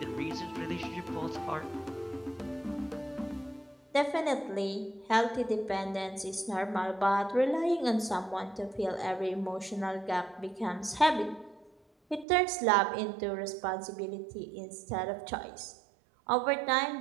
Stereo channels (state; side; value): drops out; left; at 12.2 s